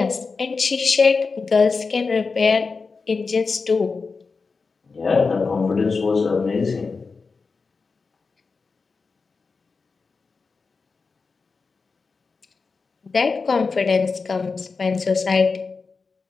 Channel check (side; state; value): right; quieter; 4.5 dB